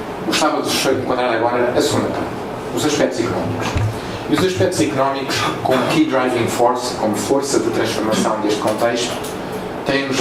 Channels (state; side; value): identical; both; correlation 1.00